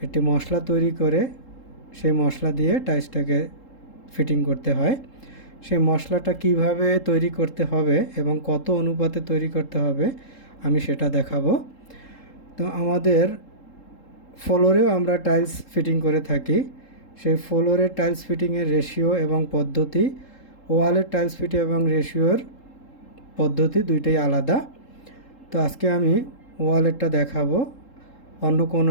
একটি মশলা তৈরি করে সেই মশলা দিয়ে টাইলসটাকে ফিটিং করতে হয়। সেই মশলাটা কিভাবে তৈরি করতে হবে এবং কত অনুপাতে তৈরি করতে হবে আমি সেটা দেখাবো। তো আমাদের ফ্লোরেও আমরা টাইলস ফিটিং করে থাকি। সেই ফ্লোরের টাইলস ফিটিংয়ের রেশিও এবং পদ্ধতি, ওয়ালের টাইলস ফিটিং এবং রেশিওর পদ্ধতি দুইটাই আলাদা। তো আজকে আমি ওয়ালেরটা দেখাবো, অন্য কোনো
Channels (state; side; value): late; right; 3.7 ms